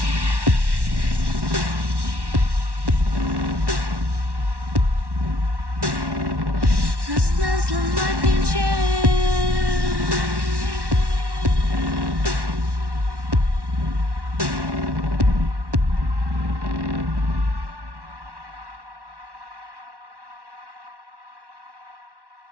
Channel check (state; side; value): late; left; 1.1 ms